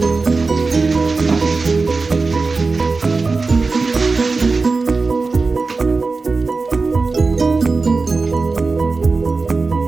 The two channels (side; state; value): left; quieter; 4.0 dB